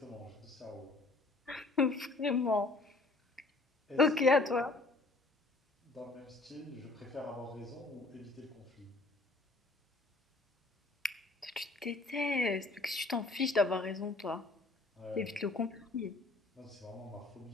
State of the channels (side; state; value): right; quieter; 3.2 dB